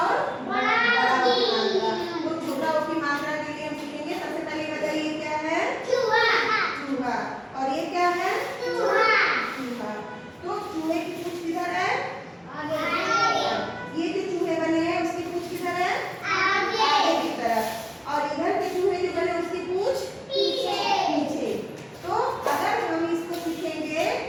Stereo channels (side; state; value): both; identical; correlation 1.00